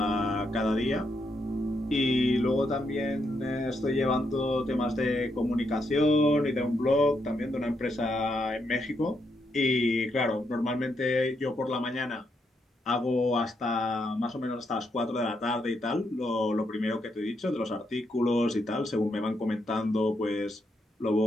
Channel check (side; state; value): both; normal; correlation 0.79